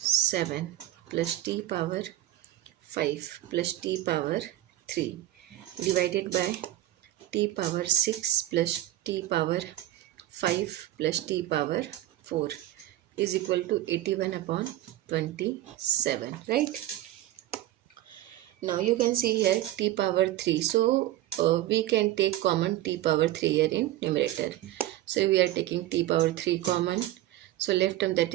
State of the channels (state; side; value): quieter; left; 14.3 dB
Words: 7 plus t power 5 plus t power 3 divided by t power 6 plus t power 5 plus t power 4 is equal to 81 upon 27, right? Now you can see here t power 3. So we can take common t power 3 here in numerator. So we are taking t power 3 common. So left term, that